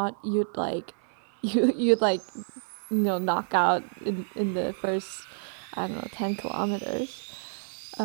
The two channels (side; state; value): left; silent; 56 dB below the other